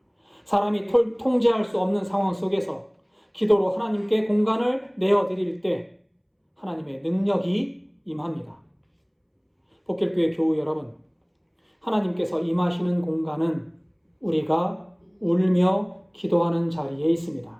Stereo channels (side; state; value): both; identical; correlation 1.00